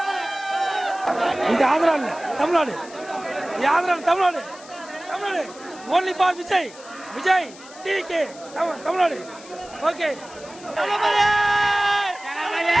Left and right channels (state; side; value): noise; left; hiss, 19 dB below the sound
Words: இது ஆந்திரா இல்ல, Tamil Nadu. Andhra Tamil Nadu, Tamil Nadu. Only for Vijay, Vijay TVK Tamil Nadu. Okay.